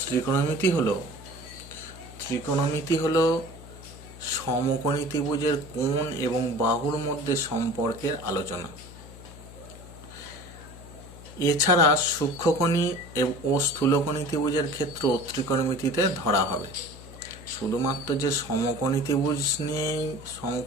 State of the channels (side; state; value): left; noise; hum, 17 dB below the sound